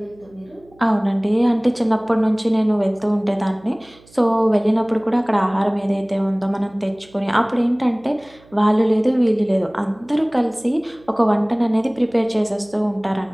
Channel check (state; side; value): noise; right; hum, 27 dB below the sound